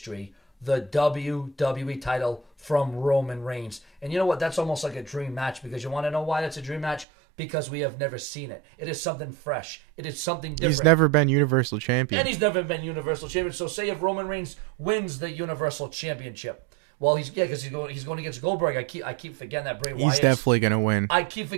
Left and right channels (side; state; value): left; drops out; at 7.1 s